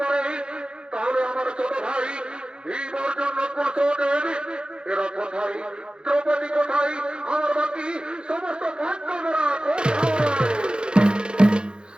পারে, তাহলে আমার ছোট ভাই ভীম অর্জুন কুশলের এরা কোথায়? দ্রৌপদী কোথায়? আমার বাকি সমস্ত পাণ্ডবরা কোথায়?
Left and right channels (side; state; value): left; late; 0.050 ms